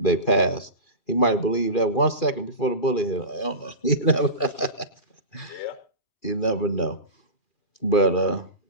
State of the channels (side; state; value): right; late; 2.4 ms